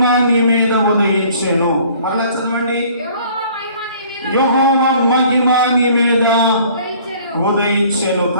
నీ మీద ఉదయించెను. మరలా చదవండి. యెహోవా మహిమ నీ మీద ఉదయించెను.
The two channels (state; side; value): inverted; both; correlation -0.54